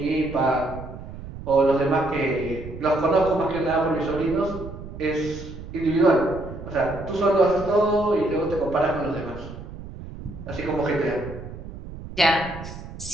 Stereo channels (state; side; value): noise; right; rumble, 12 dB below the sound